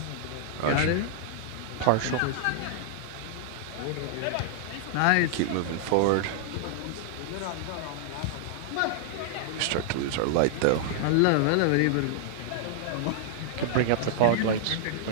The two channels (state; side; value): different; both; correlation -0.01